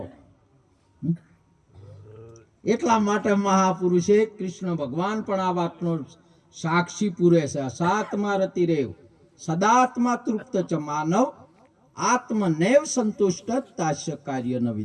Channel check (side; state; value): both; identical; correlation 1.00